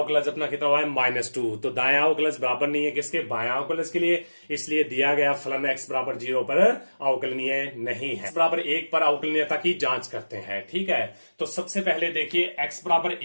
अपना कितना हुआ है -2। तो दायां अवकलज बराबर नहीं है किसके, बायां अवकलज के लिए, इसलिए दिया गया फलन x बराबर 0 पर अवकलनीय नहीं है। x बराबर 1 पर अवकलनीयता की जांच करते हैं, ठीक है। तो सबसे पहले देखिए x बराबर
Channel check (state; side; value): inverted; both; correlation -1.00